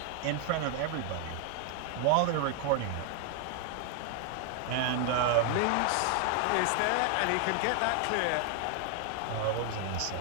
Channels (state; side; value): different; both; correlation 0.00